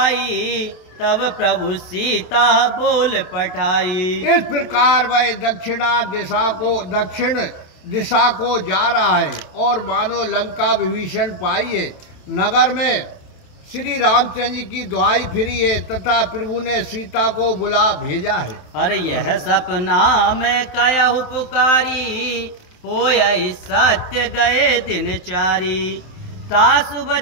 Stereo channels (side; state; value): right; late; 27 ms